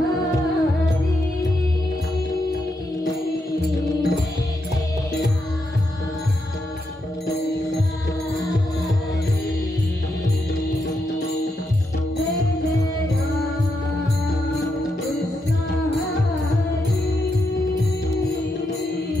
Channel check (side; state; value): both; normal; correlation 0.82